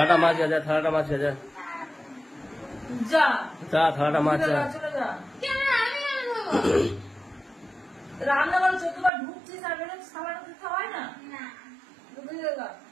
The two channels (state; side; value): drops out; left; at 9.1 s